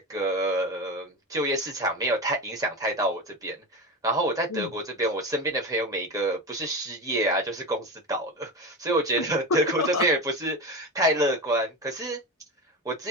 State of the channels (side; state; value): both; normal; correlation 0.23